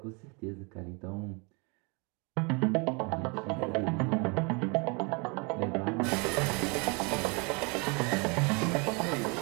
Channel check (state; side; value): quieter; left; 31.7 dB